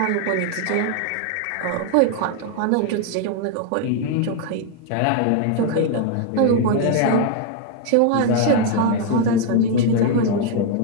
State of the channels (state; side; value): different; both; correlation 0.00